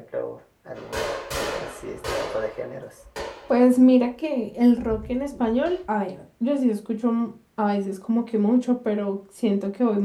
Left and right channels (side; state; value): both; identical; correlation 1.00